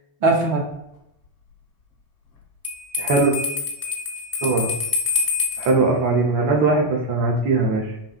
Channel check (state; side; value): late; left; 2.3 ms